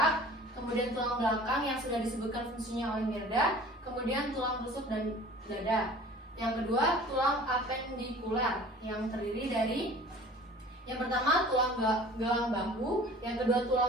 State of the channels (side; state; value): both; normal; correlation 0.45